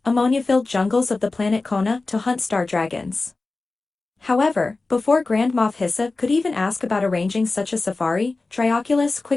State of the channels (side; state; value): right; quieter; 3.5 dB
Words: ammonia-filled jungles of the planet Kona to hunt star dragons. However, before Grand Moff Hyssop could even ask about arranging such a safari, Trioculus